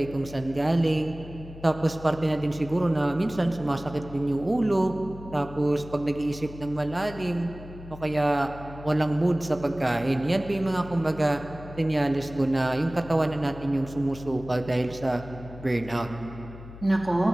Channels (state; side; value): noise; left; hum, 15 dB below the sound